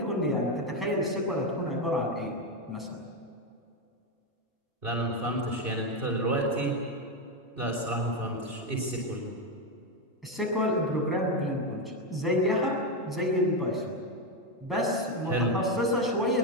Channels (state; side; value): normal; both; correlation 0.09